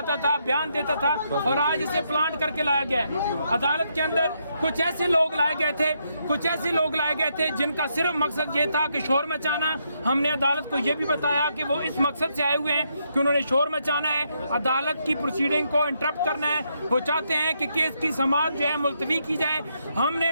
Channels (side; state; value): both; inverted; correlation -0.78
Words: تھا، بیان دیتا تھا، اور آج اسے پلانٹ کر کے لایا گیا ہے. عدالت کے اندر کچھ ایسے لوگ لائے گئے تھے جن کا صرف مقصد یہ تھا کہ شور مچانا. ہم نے عدالت کو یہ بھی بتایا کہ وہ اس مقصد سے آئے ہوئے ہیں کہ انہوں نے شور مچانا ہے، عدالت کی پروسیڈنگ کو انٹرپٹ کرنا ہے. وہ چاہتے ہیں کہ کیس کی سماعت جو ہے ملتوی کی جائے. ہم نے